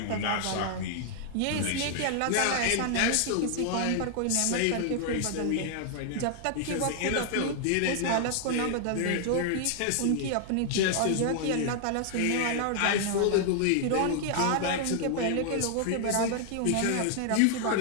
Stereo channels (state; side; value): different; both; correlation 0.00